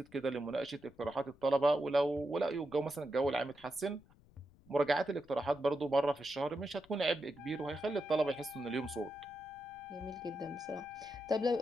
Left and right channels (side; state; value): left; noise; rumble, 26 dB below the sound